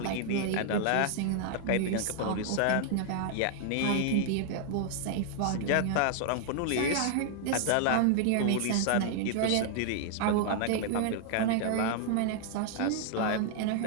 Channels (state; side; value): different; both; correlation 0.00